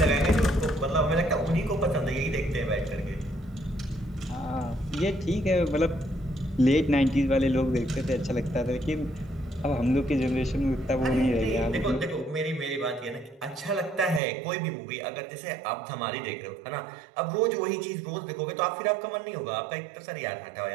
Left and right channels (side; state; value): left; drops out; at 14.2 s